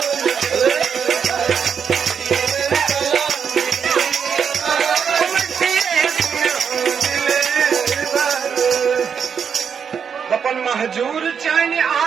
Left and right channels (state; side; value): quieter; left; 7.0 dB